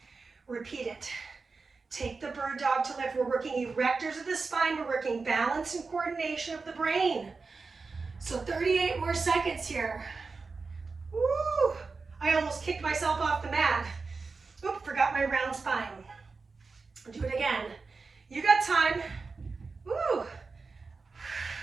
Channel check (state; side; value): quieter; left; 4.3 dB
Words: Repeat it. Take the bird dog to lift. We're working erectors of the spine. We're working balance and coordination of the brain. So 38 more seconds here. Woo! I almost kicked myself off the mat. Oop, forgot my round spine. Do it again. You got time. Woo!